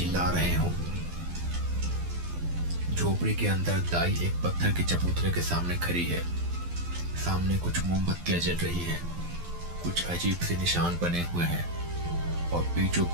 रहे हो। झोपड़ी के अंदर दाई एक पत्थर के चबूतरे के सामने खड़ी है। सामने कुछ मोमबत्तियां जल रही हैं, कुछ अजीब से निशान बने हुए हैं और बीचों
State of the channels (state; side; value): late; left; 12 ms